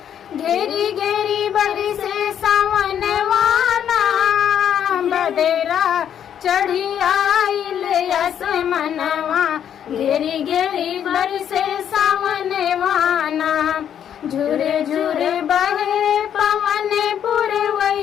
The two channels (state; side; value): quieter; right; 9.3 dB